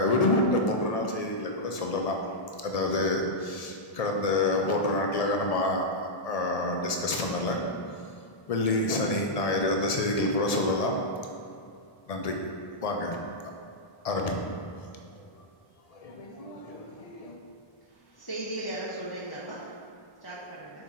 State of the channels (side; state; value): right; late; 1.7 ms